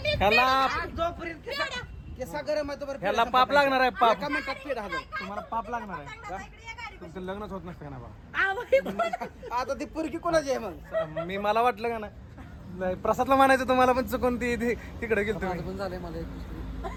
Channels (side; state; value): both; identical; correlation 1.00